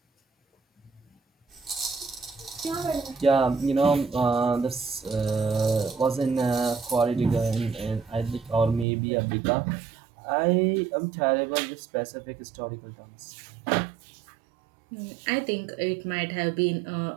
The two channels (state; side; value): drops out; left; at 8.8 s